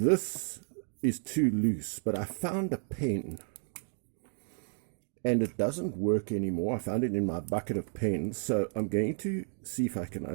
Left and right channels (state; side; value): silent; left; 56 dB below the other